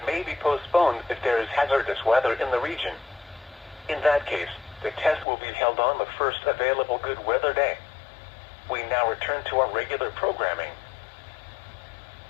may be postponed if there is hazardous weather in the region. In that case, the test will be held on the first available good weather day. We now return to our regular programming.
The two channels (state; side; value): drops out; right; at 5.2 s